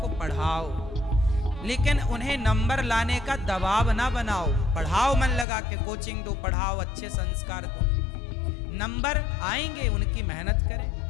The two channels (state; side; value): drops out; right; at 5.5 s